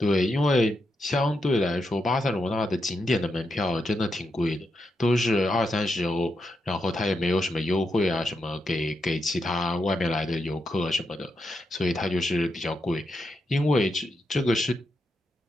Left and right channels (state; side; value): normal; both; correlation 0.84